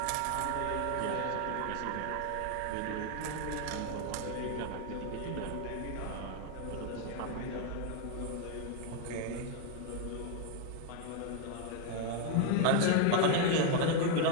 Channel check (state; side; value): different; both; correlation 0.01